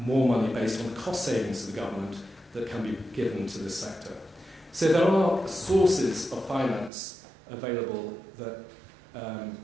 more money based on the cost savings to the government that can be given to this sector. So there are sources of finance available that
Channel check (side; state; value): left; drops out; at 6.9 s